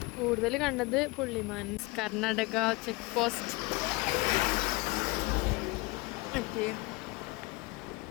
കൂടുതൽ കണ്ടത് പുള്ളിമാൻ Karnataka check post.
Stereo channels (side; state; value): right; quieter; 24.5 dB